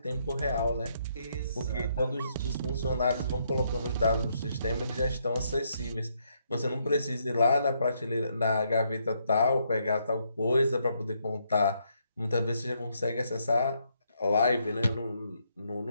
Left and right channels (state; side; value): inverted; both; correlation -0.75